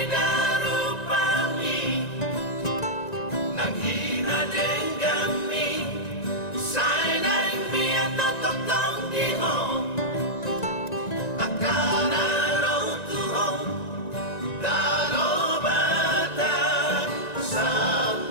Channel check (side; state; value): right; late; 1.9 ms